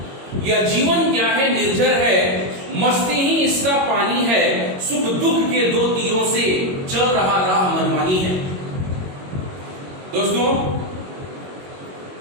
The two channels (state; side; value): late; left; 22 ms